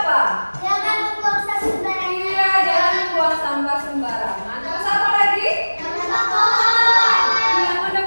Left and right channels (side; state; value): both; inverted; correlation -1.00